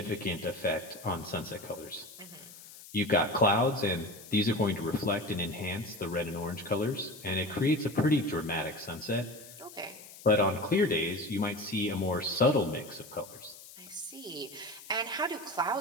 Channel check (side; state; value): left; noise; hiss, 17 dB below the sound